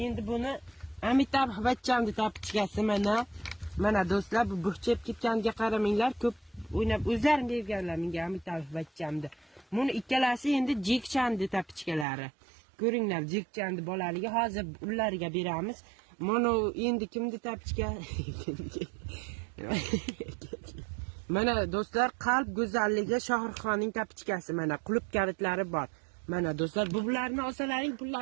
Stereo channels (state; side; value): drops out; left; at 12.1 s